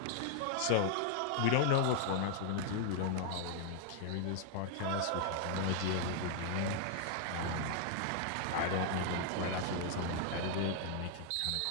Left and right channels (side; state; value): both; different; correlation 0.00